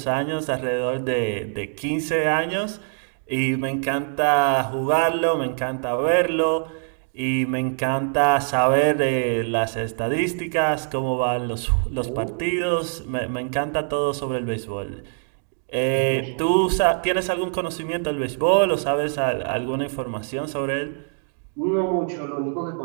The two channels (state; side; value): silent; left; 63 dB below the other